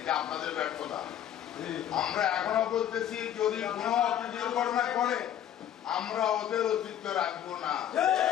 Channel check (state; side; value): quieter; right; 10.6 dB